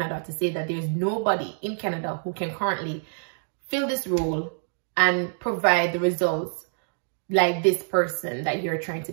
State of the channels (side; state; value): left; silent; digital silence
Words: to say that there's nobody in Canada who can currently fill this role and provide the results like this person that you're trying to